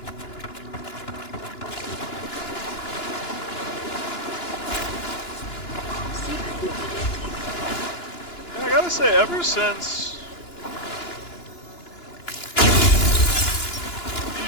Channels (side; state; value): right; late; 2.9 ms